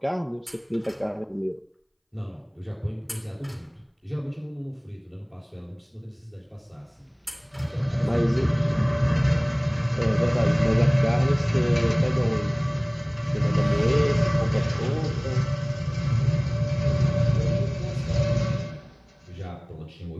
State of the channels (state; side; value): identical; both; correlation 1.00